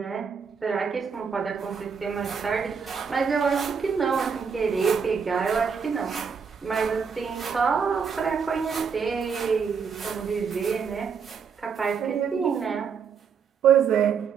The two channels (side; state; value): left; quieter; 6.3 dB